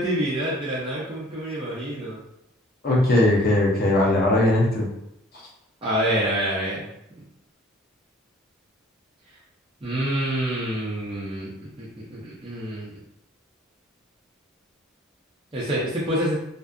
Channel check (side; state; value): both; normal; correlation 0.53